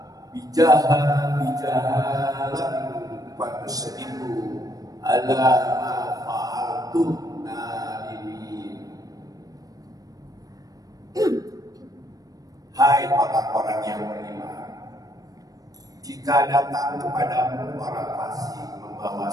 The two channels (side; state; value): left; late; 0.18 ms